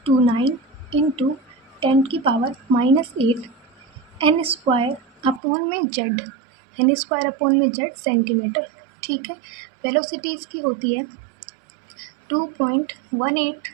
इंटू 10⁻⁻⁸ n² अपॉन में z, एन स्क्वायर अपॉन में जेड सेंटीमीटर, ठीक है। वेलोसिटी इसकी होती है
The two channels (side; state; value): left; drops out; at 5.4 s